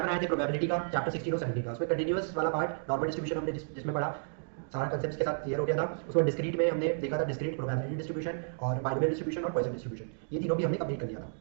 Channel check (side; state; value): left; silent; digital silence